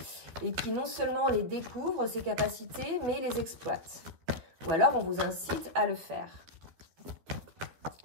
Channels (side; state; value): left; late; 12 ms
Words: et qui non seulement les découvre, ses capacités, mais les exploite. Ou alors, on vous incite à le faire.